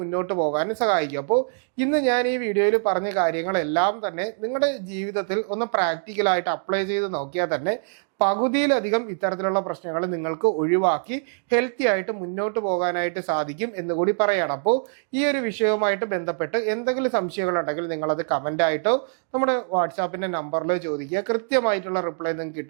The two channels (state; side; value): silent; left; digital silence